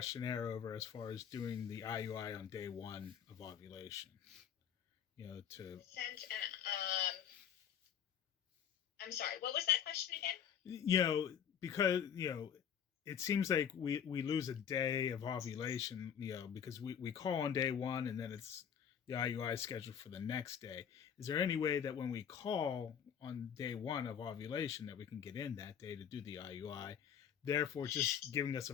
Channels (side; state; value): right; quieter; 8.5 dB